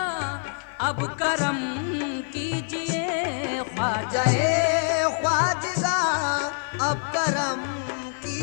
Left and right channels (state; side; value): silent; right; 57 dB below the other